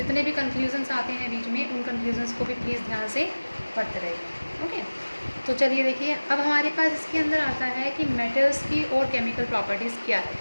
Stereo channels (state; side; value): inverted; both; correlation -1.00